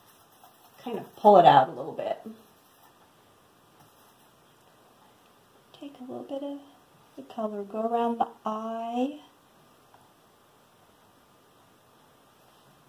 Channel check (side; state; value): both; identical; correlation 1.00